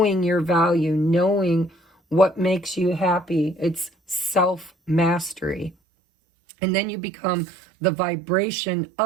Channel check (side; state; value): left; drops out; at 5.8 s